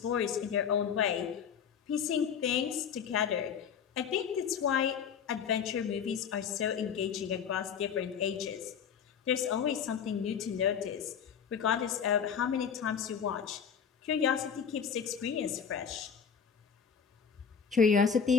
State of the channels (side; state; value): right; quieter; 7.2 dB